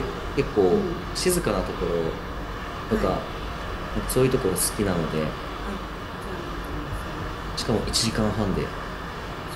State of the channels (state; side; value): identical; both; correlation 1.00